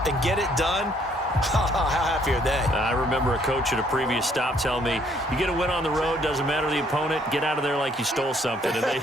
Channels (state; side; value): normal; both; correlation 0.65